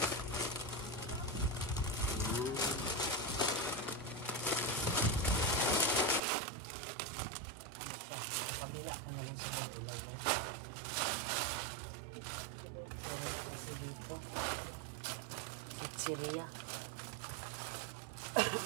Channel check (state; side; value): drops out; left; at 6.2 s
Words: Kabila ko na lang sa ilagay. Pero kasi dito pizzeria.